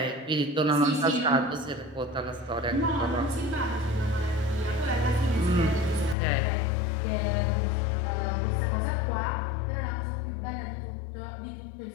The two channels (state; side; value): drops out; right; at 6.2 s